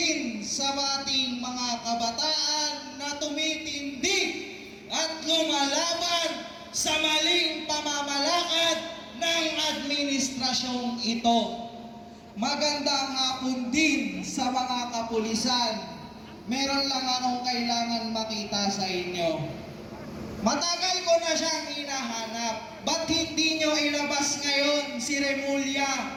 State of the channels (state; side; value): identical; both; correlation 1.00